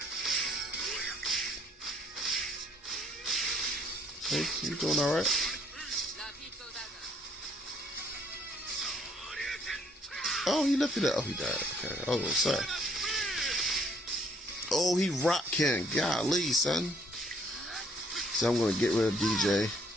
Hey, you doing all right? Oh, he lifted it. Oh, he died. Okay. Oh, sorry. Oh, he rocked Ken. Golly, son. So I'm gonna get rid of DJ.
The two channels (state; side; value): normal; both; correlation 0.65